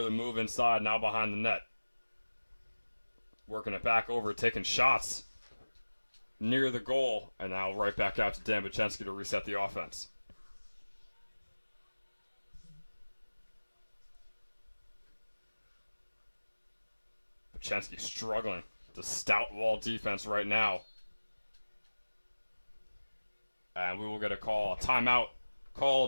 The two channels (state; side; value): inverted; both; correlation -1.00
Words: the move inside, now behind the net. Working it back over, taking shots near the goal, and now right back out to Dan Bachensky to reset the offense. Bachensky struggling to stout Wall defense right now. And we will get a call. A timeout